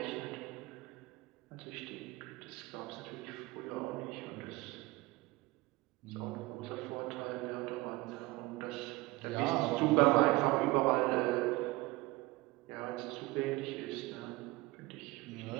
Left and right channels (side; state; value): left; quieter; 21.2 dB